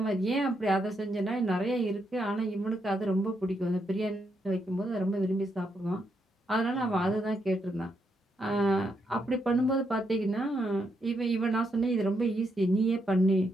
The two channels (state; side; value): normal; both; correlation 0.79